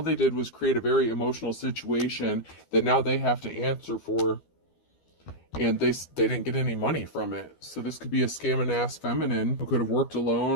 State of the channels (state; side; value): late; right; 12 ms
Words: they did was create a very emotional situation that now they have to answer for. And they didn't get any money from it. So this could be a scamming ass feminine who could have worked